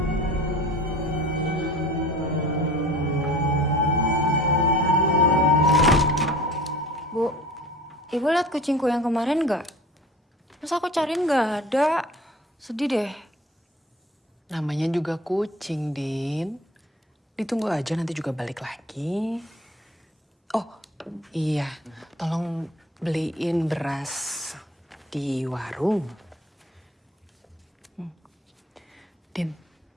Bu, ibu lihat kucingku yang kemarin nggak? Terus aku cariin nggak ada. Sedih deh. Namanya juga kucing, Din. Ditunggu aja nanti juga balik lagi. Oh, iya. Tolong beliin beras di warung. Din,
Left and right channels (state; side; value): normal; both; correlation 0.44